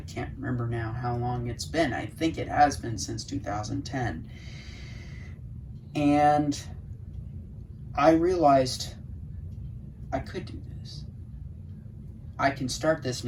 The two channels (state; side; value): identical; both; correlation 1.00